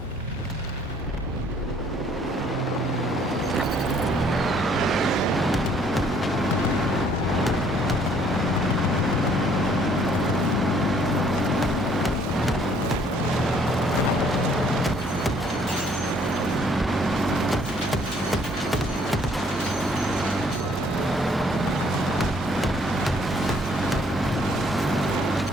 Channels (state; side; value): normal; both; correlation 0.62